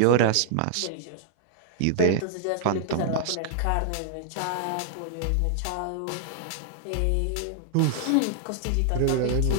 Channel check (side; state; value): both; different; correlation 0.00